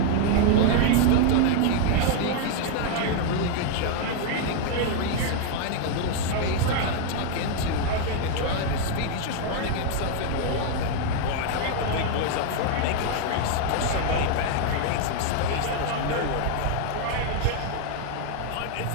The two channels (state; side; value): different; both; correlation 0.00